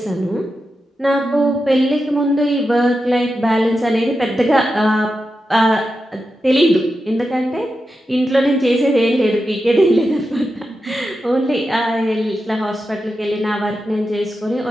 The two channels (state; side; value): normal; both; correlation 0.89